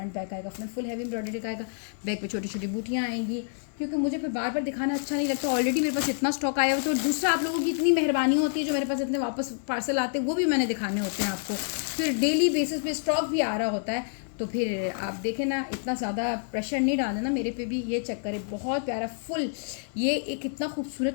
बैक आएगा। फ्रंट फुल हैवी एम्ब्रॉयडरी का आएगा, बैक पे छोटी छोटी बूटियाँ आएंगी, क्योंकि मुझे फिर बार बार दिखाना अच्छा नहीं लगता। ऑलरेडी मेरे पास इतना स्टॉक आया हुआ, तो दूसरा आप लोगों की इतनी मेहरबानी होती है जो मेरे पास इतने वापस पार्सल आते हैं वो भी मैंने दिखाने होते हैं आपको, फिर डेली बेसिस पे स्टॉक भी आ रहा होता है, तो फिर आप देखें ना इतना ज़्यादा प्रेशर नहीं डालना ना मेरे पे भी। ये चेक करें, बहुत प्यारा फुल, ये एक इतना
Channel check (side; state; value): right; silent; 59 dB below the other